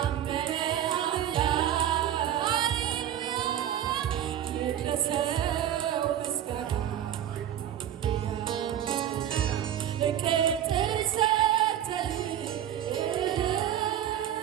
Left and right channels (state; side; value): quieter; left; 10.7 dB